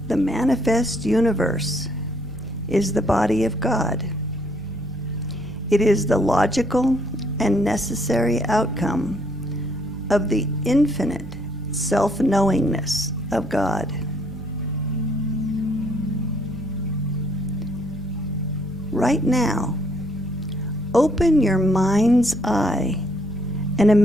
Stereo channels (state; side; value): normal; both; correlation 0.68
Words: The manifest universe is the body of God. It is the logical and necessary outcome of the infinite self-knowingness of God. Right now, open your mind's eye and